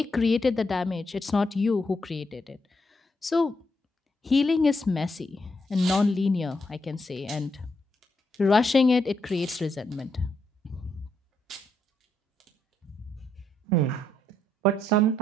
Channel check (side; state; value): both; normal; correlation 0.79